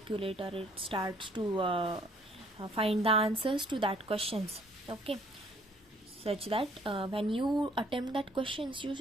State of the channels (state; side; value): normal; both; correlation 0.60